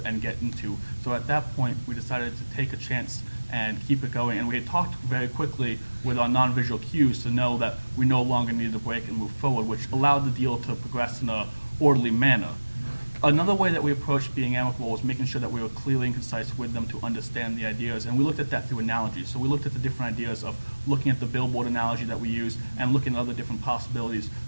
and get into. So at that point, we decided to take a chance and keep it going. And we had talked very quickly with our non-visual cues to know that we no longer needed a break and move forward, which allowed the deal to progress in a orderly manner. Another way that we approached being amicable was making sure that we were clearly and concise with them to understand the ideas, and we looked at that through analogies. So we looked at the different ideas of looking at the billboard analogy that we used and looking at other different possibilities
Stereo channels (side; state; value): both; inverted; correlation -1.00